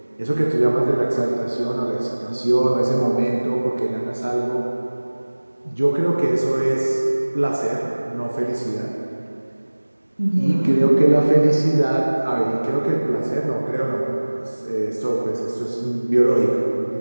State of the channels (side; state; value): both; inverted; correlation -1.00